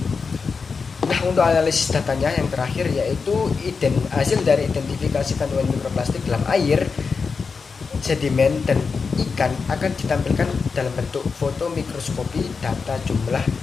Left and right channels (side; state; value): right; quieter; 5.1 dB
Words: Nah, untuk analisis datanya yang terakhir yaitu hasil dari identifikasi kandungan mikroplastik dalam air, sedimen, dan ikan akan ditampilkan dalam bentuk foto mikroskopi. Data jumlah